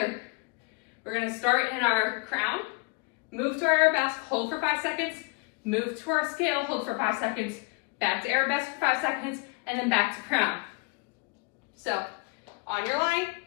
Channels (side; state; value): right; quieter; 28.1 dB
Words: We're going to start in our crown, move to our arabesque, hold for 5 seconds, move to our scale, hold for 5 seconds, back to arabesque for 5 seconds, and then back to crown. So, on your line,